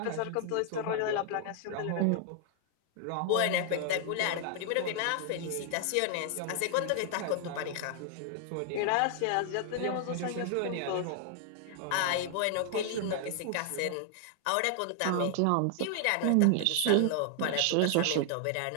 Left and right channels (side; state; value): both; different; correlation 0.00